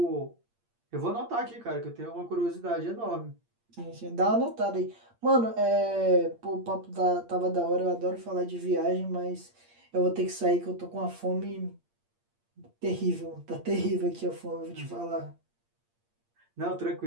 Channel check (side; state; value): left; late; 8.6 ms